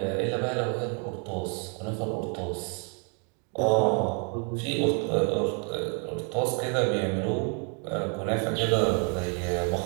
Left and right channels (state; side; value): quieter; left; 35.4 dB